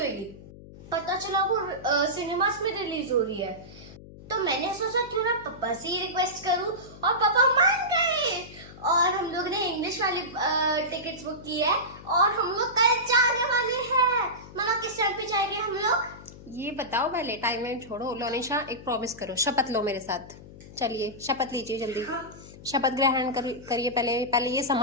पता चला वो सिनेमास में रिलीज हो रही है। तो मैंने सोचा क्यों ना पापा से ही रिक्वेस्ट करूं और पापा मान गए और हम लोग ने इंग्लिश वाली टिकट्स बुक की है और हम लोग कल जाने वाले हैं। मामा किस टाइम पे जाएंगे हम लोग? ये बताओ पहले, टाइम वाइम छोड़ो। लोनिशा एक प्रॉमिस करो, शपथ लो मेरे साथ। चलिए शपथ लीजिए जल्दी। हाँ। शपथ ग्रहण करिए। पहले ये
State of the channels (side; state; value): left; noise; hum, 18 dB below the sound